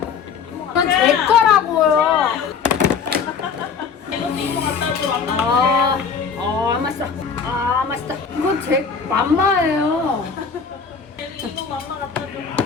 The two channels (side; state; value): right; quieter; 6.0 dB